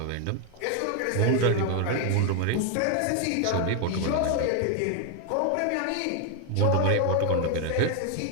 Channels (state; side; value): different; both; correlation 0.01